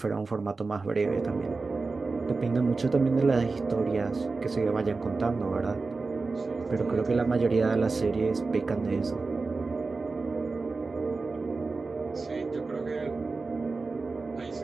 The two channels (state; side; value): quieter; left; 4.0 dB